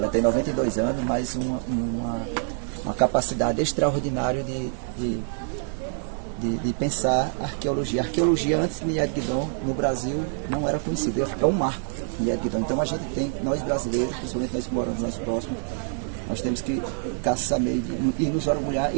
tem 92 anos, mas uma capacidade extraordinária de pensar arqueologia. A arqueologia antes de Niel de Guidon, no Brasil, não era conhecida. É um marco, Niel de Guidon. Então a gente tem, nós brasileiros, principalmente nós que moramos mais próximos, nós temos que caçar meios, e nos orgulhar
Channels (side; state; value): left; silent; 61 dB below the other